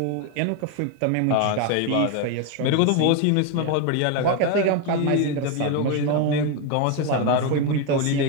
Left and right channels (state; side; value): different; both; correlation 0.01